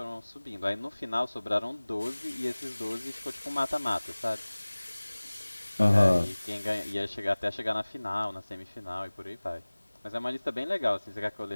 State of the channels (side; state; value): both; inverted; correlation -1.00